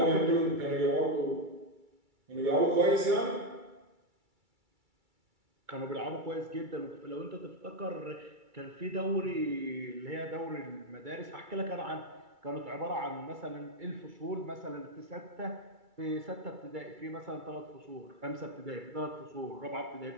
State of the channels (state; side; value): late; left; 2.3 ms